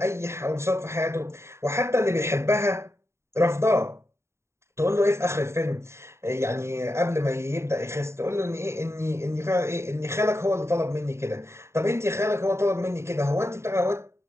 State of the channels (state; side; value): late; left; 0.13 ms